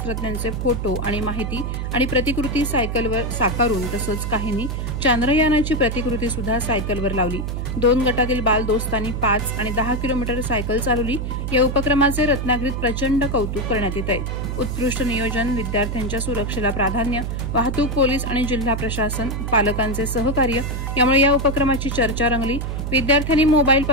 फोटो आणि माहिती आणि प्रतिकृती सायकलवर साकारून तसंच काहींनी चांद्रयानाची प्रतिकृती सुद्धा सायकलवर लावली। 2 गटातील बाल दोस्तांनी 5 आणि 10 किलोमीटर सायकल चालवली। या उपक्रमाचे रत्नागिरीत प्रचंड कौतुक करण्यात येत आहे। उत्कृष्ट नियोजन, विद्यार्थ्यांच्या सुरक्षेला प्राधान्य, वाहतूक पोलीस आणि जिल्हा प्रशासन, पालकांचे सहकार्य यामुळे या उपक्रमाची चर्चा रंगली। विद्यार्थ्यांनी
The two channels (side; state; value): right; noise; hum, 3 dB below the sound